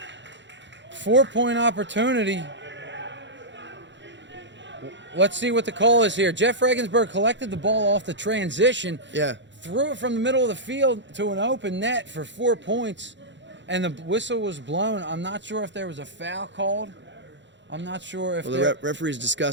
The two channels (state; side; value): late; left; 0.53 ms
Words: 4-point opportunity. Let's see what the call is here. Jeff Regensburg collected the ball off the transition, threw it from the middle of the field to an open net for 4 points, and the whistle was blown. I'm not sure if there was a foul called. I'm not sure if the referee's